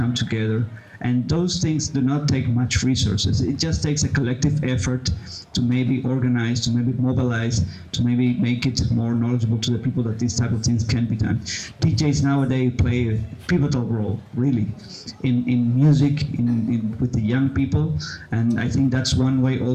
together, and those things do not take much resources. It just takes a collective effort to maybe organize, to maybe mobilize, to maybe make it more knowledgeable to the people that these type of things can be done. DJs nowadays play a pivotal role, really, in music, with the young people, and I think that's one way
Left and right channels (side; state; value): both; identical; correlation 1.00